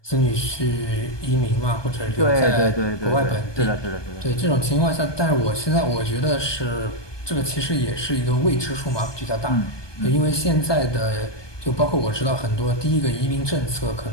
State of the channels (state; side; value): late; right; 1.2 ms